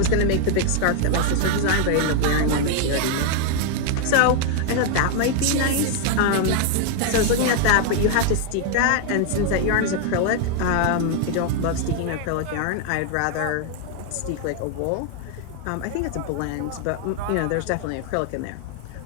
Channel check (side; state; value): both; different; correlation 0.00